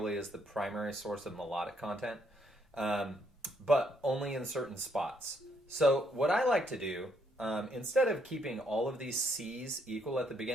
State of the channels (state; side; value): normal; both; correlation 0.72